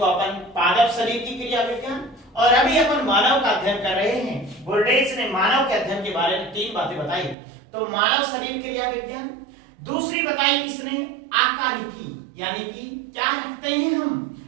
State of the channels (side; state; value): left; drops out; at 7.4 s